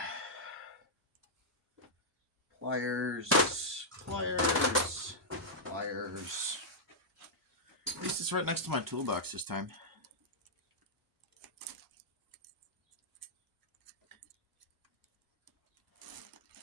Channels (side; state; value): both; normal; correlation -0.09